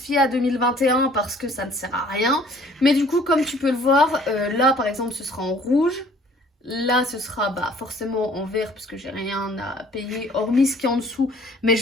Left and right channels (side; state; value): both; normal; correlation 0.55